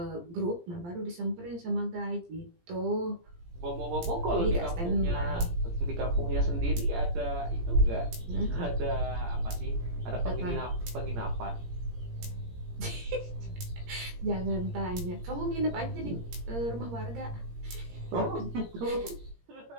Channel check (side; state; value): left; late; 17 ms